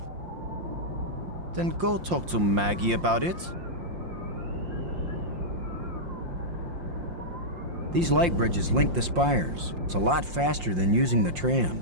Then go talk to Maggie about it. These light bridges link the spires. It's a lot faster than using the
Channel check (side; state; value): left; late; 5.7 ms